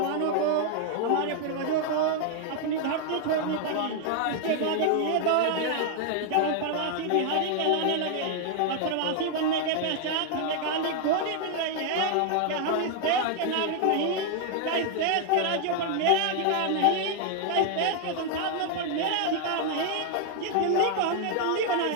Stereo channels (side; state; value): both; different; correlation 0.00